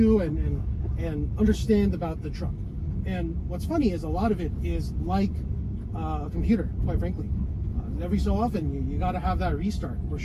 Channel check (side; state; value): both; identical; correlation 1.00